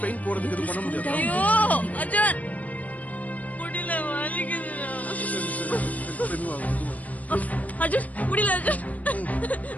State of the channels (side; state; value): right; late; 0.072 ms